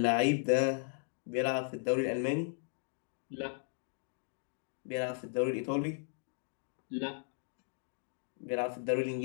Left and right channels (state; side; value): silent; right; digital silence